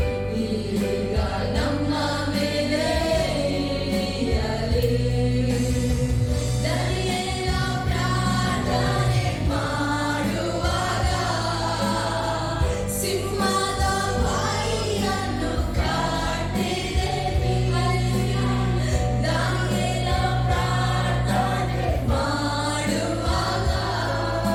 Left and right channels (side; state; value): both; identical; correlation 1.00